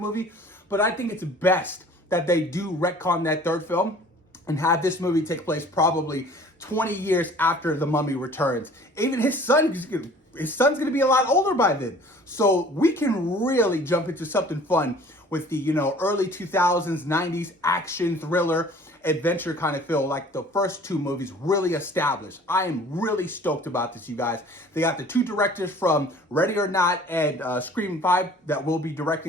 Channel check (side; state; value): both; normal; correlation 0.49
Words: but I think it's best that they do retcon that third film and have this movie take place probably 20 years after the Mummy returns. Even his son's going to be a lot older by then. So we can really jump into something fun with the, early 2000s, 90s action thriller adventure kind of feel like the first two movies really established. I am really stoked about this, you guys. They got the two directors from Ready or Not and Scream 5 that will be